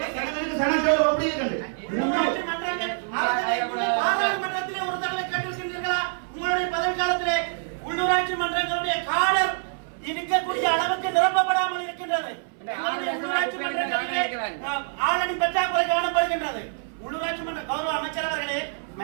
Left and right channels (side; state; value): left; silent; 60 dB below the other